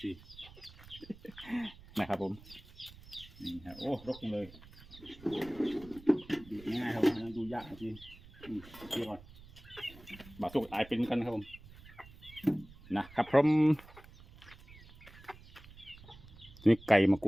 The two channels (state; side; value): noise; right; rumble, 20 dB below the sound